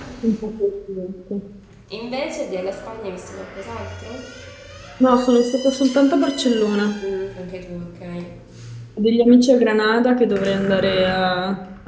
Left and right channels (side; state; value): both; identical; correlation 1.00